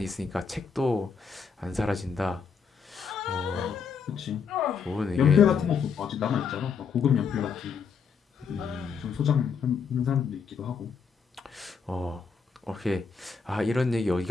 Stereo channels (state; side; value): quieter; right; 5.9 dB